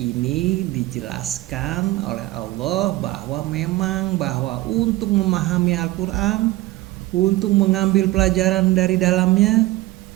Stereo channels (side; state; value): left; quieter; 18.3 dB